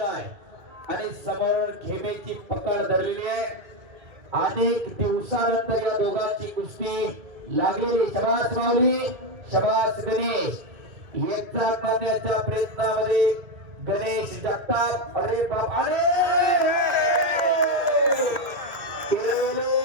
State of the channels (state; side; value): late; left; 2.2 ms